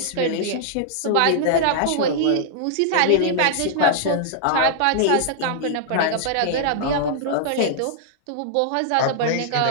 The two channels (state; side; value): different; both; correlation -0.01